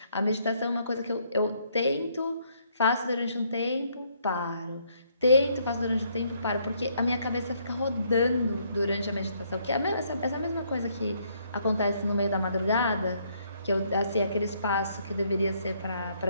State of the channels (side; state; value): both; inverted; correlation -0.69